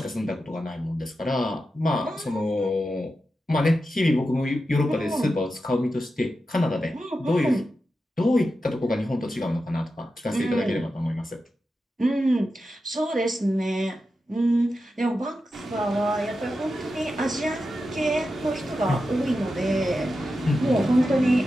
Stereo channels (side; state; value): both; normal; correlation 0.90